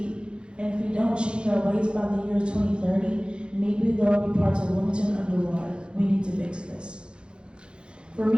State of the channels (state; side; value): late; left; 0.054 ms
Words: And if we don't change our ways by the year 2030, maybe there will be parts of Wilmington underwater. We need to fix this. For